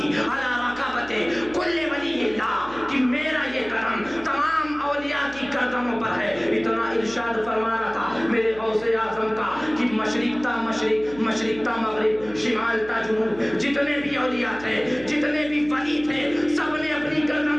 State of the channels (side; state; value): right; noise; hum, 19 dB below the sound